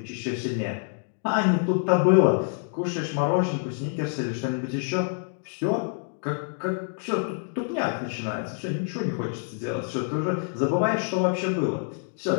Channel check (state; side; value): silent; right; 60 dB below the other